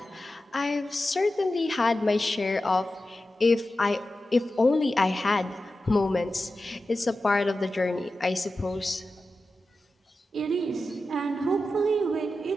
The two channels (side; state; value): both; normal; correlation 0.93